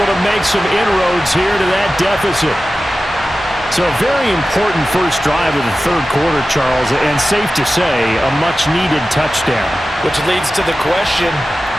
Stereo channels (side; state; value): both; normal; correlation 0.94